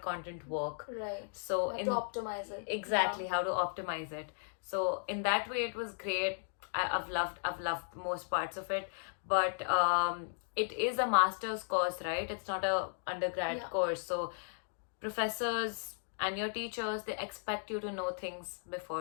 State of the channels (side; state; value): right; silent; digital silence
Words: content work. So to optimize it. Exactly, how to optimize it. So in that way, it was great. I've loved most parts of it, but it is a master's course, right? It's not a undergrad course. So professors and your teachers, they expect you to know things